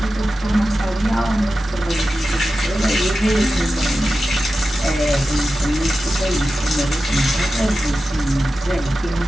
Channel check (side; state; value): both; normal; correlation 0.93